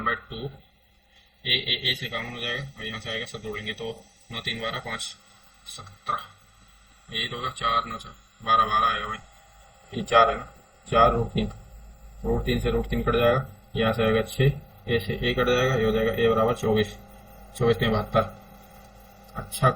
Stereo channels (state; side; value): identical; both; correlation 1.00